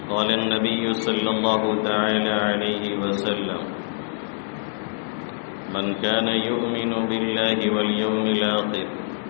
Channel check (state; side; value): silent; right; 62 dB below the other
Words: قال النبي صلى الله تعالى عليه وسلم من كان يؤمن بالله واليوم الآخر